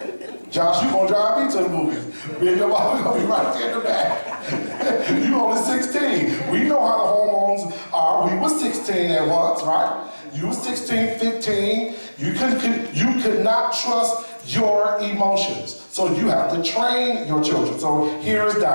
Josh, you gonna drive me to the movies. Me and your mom gonna be right there in the back. You only 16. We know how the hormones are. We was 16 at once, right? You was 16, 15. You could not trust your emotions. So you have to train your children. So here's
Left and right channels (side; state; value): both; inverted; correlation -1.00